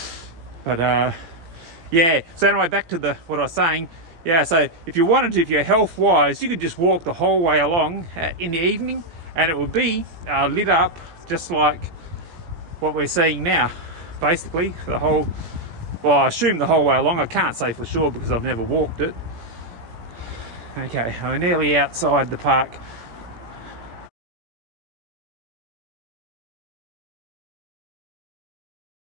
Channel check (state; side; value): late; left; 17 ms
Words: But yeah, so anyway, back to what I was saying. Yeah, so if you wanted to, if you're health wise, you could just walk the whole way along in the evening, and it would be lit up just like what we're seeing now. Basically, well, I assume the whole way along. I can't say for sure because I've never walked it. Okay, we're nearly outside the park.